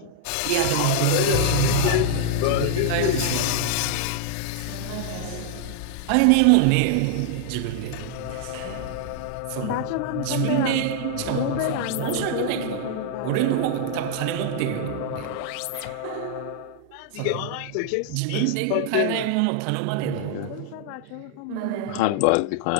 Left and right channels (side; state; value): both; different; correlation 0.00